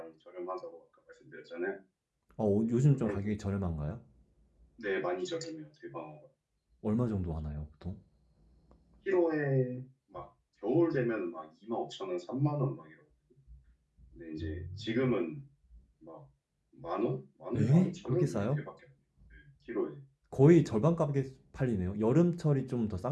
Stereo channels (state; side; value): identical; both; correlation 1.00